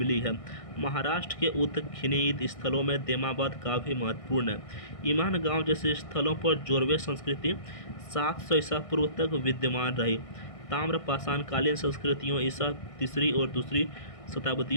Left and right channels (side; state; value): right; late; 1.6 ms